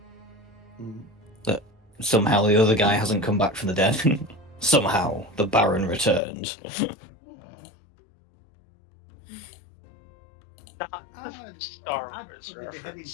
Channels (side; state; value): right; drops out; at 6.2 s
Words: Mm. That somehow the other guy hasn't come back from the dead. Somehow the Baron returned. Not the Star Wars I'd be heading reference,